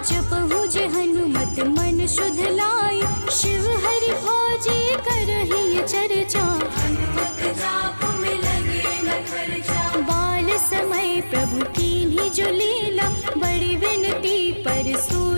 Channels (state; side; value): inverted; both; correlation -1.00